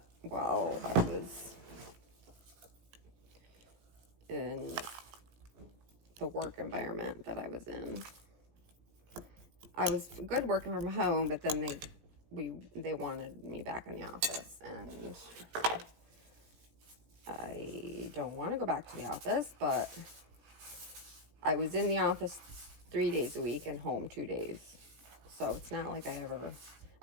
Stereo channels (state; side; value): late; left; 17 ms